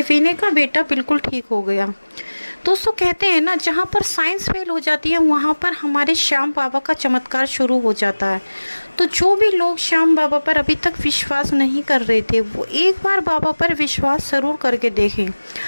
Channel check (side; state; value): both; inverted; correlation -1.00